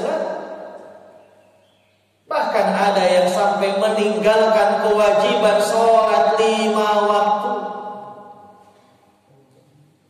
Bahkan ada yang sampai meninggalkan kewajiban sholat 5 waktu.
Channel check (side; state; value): both; identical; correlation 1.00